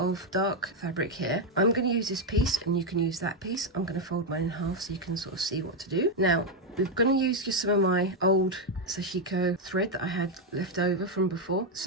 dark fabric here. I'm going to use this piece and you can use that piece. I'm going to fold mine in half so you can sort of see what to do. Now, we're going to use just some of my old sashiko thread that I had left over from before.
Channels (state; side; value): normal; both; correlation 0.03